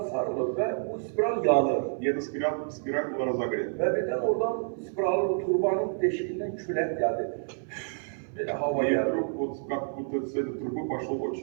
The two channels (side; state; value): left; silent; 59 dB below the other